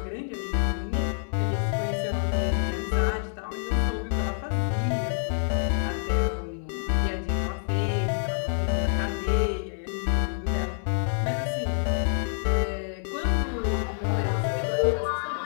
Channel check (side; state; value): right; silent; 60 dB below the other